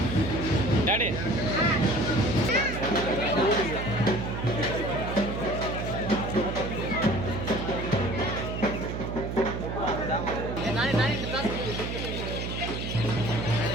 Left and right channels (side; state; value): right; noise; hum, 4 dB below the sound